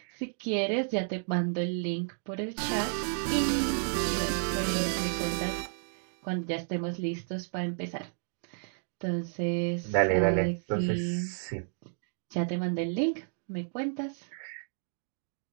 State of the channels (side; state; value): left; silent; digital silence